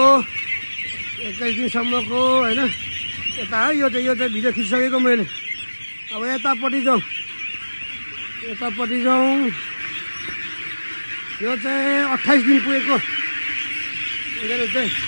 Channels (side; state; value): both; inverted; correlation -1.00